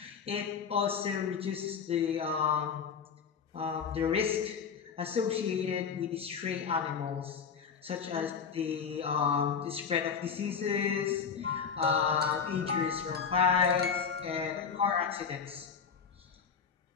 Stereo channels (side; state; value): right; quieter; 6.4 dB